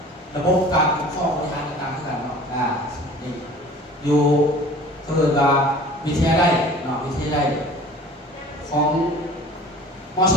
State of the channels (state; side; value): normal; both; correlation 0.45